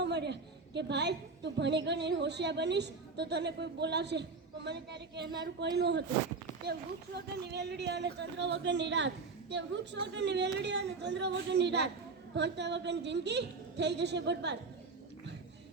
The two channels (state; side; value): quieter; left; 4.2 dB